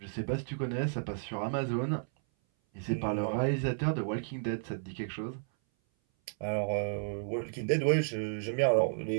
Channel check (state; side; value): silent; left; 56 dB below the other